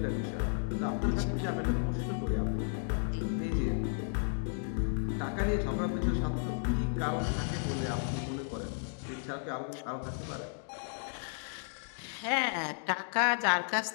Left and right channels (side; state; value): right; silent; 55 dB below the other